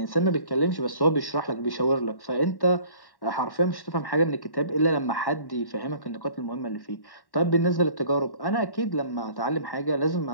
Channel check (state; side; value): late; right; 1.1 ms